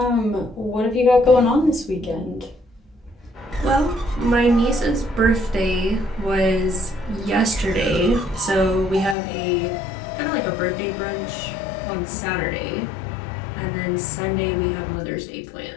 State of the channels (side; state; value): right; drops out; at 9.2 s